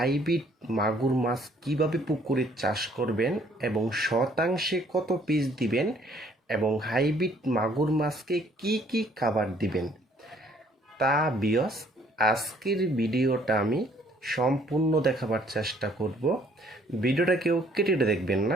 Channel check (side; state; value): both; normal; correlation 0.62